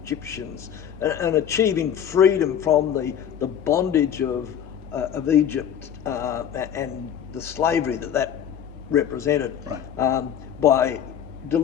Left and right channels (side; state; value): right; quieter; 9.1 dB